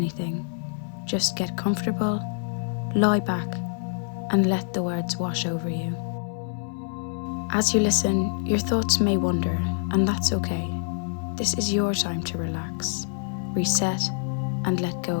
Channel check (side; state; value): right; silent; 58 dB below the other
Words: Just get comfortable, lie back, and let the words wash over you. As you listen, your thoughts may wander, and that's okay. This is your time to relax, reset, and let go